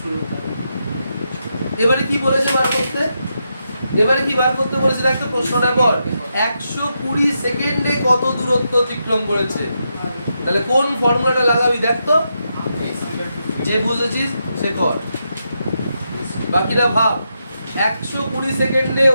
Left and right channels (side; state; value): both; inverted; correlation -0.84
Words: এবারে কি বলেছে বার করতে, এবারে কি বার করতে বলেছে একটা প্রশ্নটা পর 120 সেকেন্ডে কত দূরত্ব অতিক্রম করেছে, তাহলে কোন ফর্মুলাটা লাগাবি দেখ তো, যে বুঝেছিস সে কর, বাকিরা ভাব 120 সেকেন্ডে